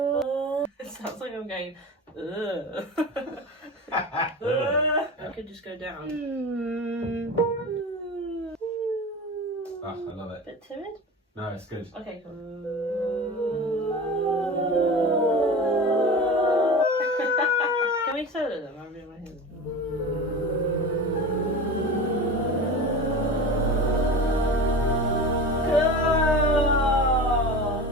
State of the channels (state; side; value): normal; both; correlation 0.31